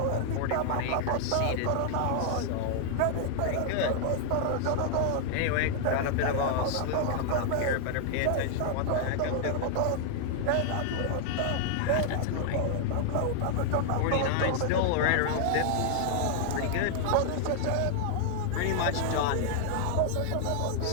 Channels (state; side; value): different; both; correlation -0.01